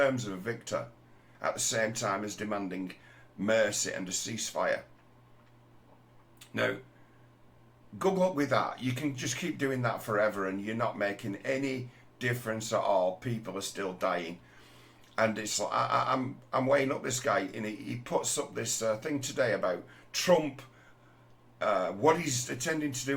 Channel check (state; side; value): identical; both; correlation 1.00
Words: of a victor at the same time as demanding mercy and a ceasefire. Now, good luck with that. You can just keep doing that forever and you're not making any difference at all. People are still dying. And it's like, I'm weighing up this guy, and he puts up this thing today about Trump. What he's intending to